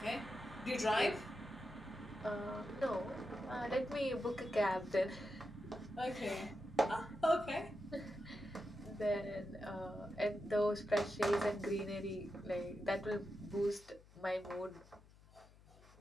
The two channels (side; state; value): left; noise; hum, 24 dB below the sound